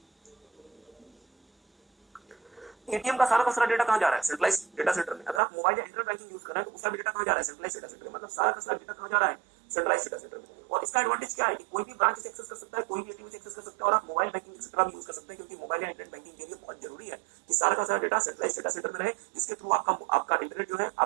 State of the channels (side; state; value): left; drops out; at 5.4 s